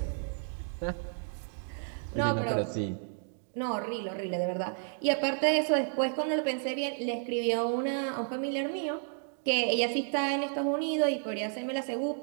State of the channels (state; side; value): silent; left; 57 dB below the other